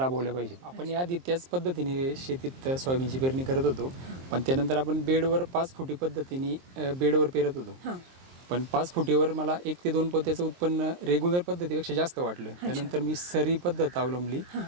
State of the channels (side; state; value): left; late; 23 ms